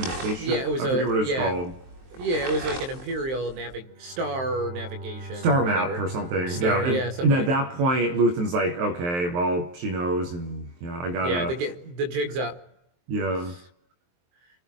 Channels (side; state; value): left; late; 23 ms